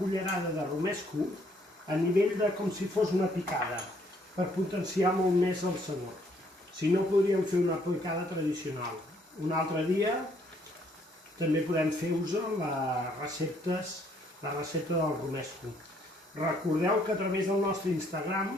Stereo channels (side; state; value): both; normal; correlation 0.66